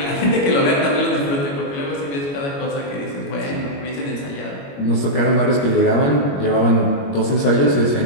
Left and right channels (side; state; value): right; late; 21 ms